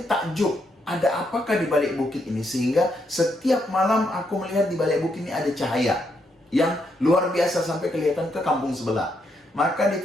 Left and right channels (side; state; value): both; normal; correlation 0.78